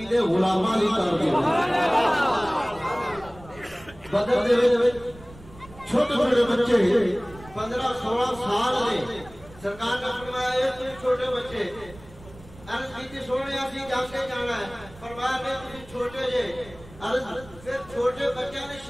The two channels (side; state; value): right; noise; rumble, 20 dB below the sound